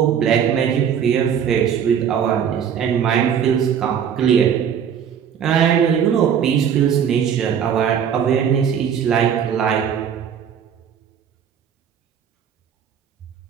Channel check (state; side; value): quieter; left; 8.2 dB